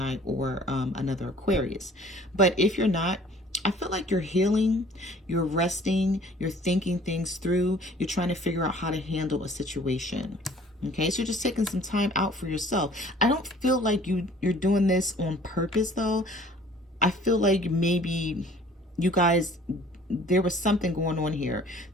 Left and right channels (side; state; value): both; normal; correlation 0.52